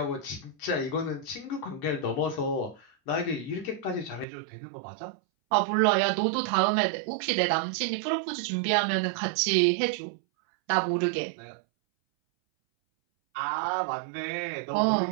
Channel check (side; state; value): left; drops out; at 4.2 s